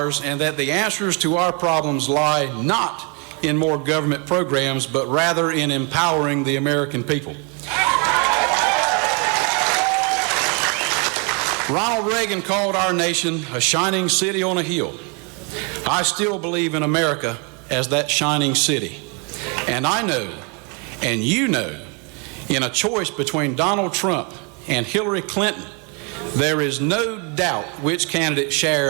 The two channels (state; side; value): quieter; left; 34.7 dB